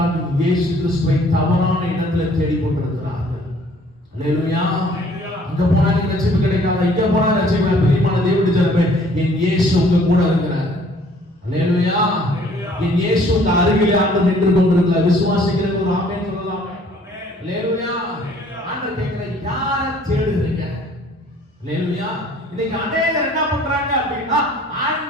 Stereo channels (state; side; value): normal; both; correlation 0.57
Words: இயேசு கிறிஸ்துவை தவறான இடத்துல தேடிக் கொண்டிருக்கிறார்கள். அல்லேலூயா. அங்க போனா ரட்சிப்பு கிடைக்காதா, இங்க போனா ரட்சிப்பு. பிரியமான தேவனுடைய ஜனமே, என் இயேசு உங்க கூட இருக்கிறார். அல்லேலூயா. என் இயேசு உங்க அருகிலே ஆண்டு நின்று கொண்டிருக்கிறார். விசுவாசிக்கிற ஒரு ஆமென் சொல்லலாமே. அல்லேலூயா. ஆண்டவர் கேட்கிற, யாரை தேடுறீங்க? அல்லேலூயா. இன்னைக்கு அநேகர் என்ன பண்றாங்க அப்படின்னா,